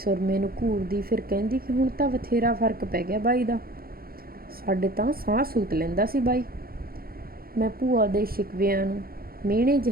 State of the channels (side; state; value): left; late; 0.43 ms